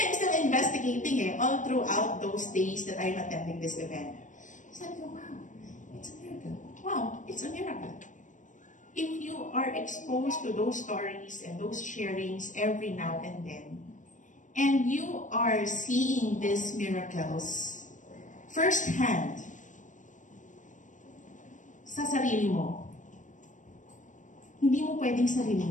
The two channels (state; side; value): late; right; 0.37 ms